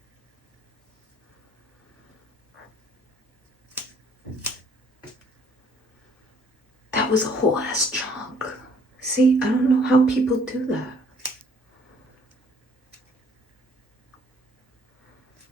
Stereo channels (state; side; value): normal; both; correlation 0.60